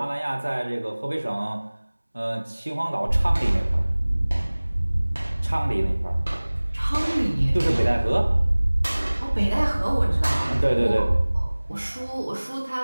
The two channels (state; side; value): inverted; both; correlation -1.00